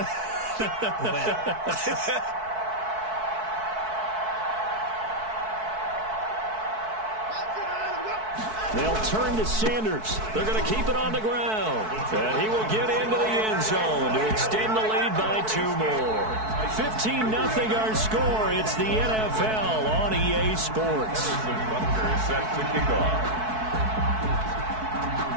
Well. They'll turn to Sanders. They're going to keep it on the ground. And he will get into the end zone to extend the lead by 2 more. 15-0 our score. It's the NFL on EA Sports. Butker set to kick off.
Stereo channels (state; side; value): late; left; 4.6 ms